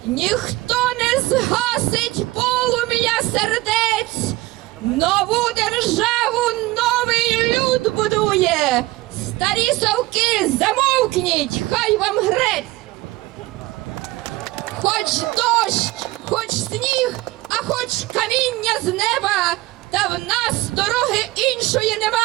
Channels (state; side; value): quieter; left; 19.5 dB